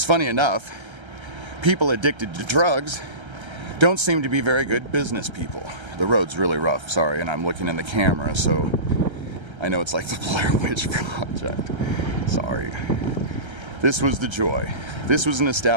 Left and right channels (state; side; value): late; left; 1.3 ms